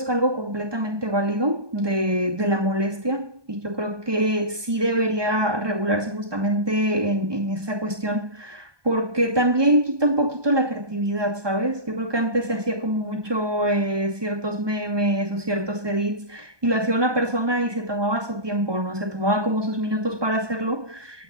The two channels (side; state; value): left; late; 1.2 ms